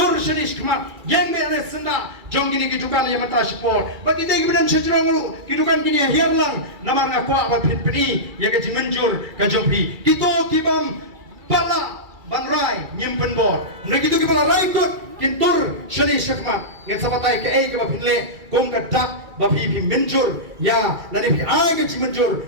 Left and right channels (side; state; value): left; late; 2.3 ms